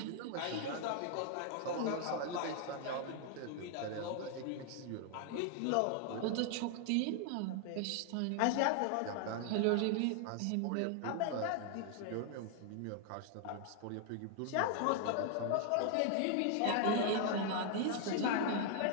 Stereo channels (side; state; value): both; different; correlation 0.00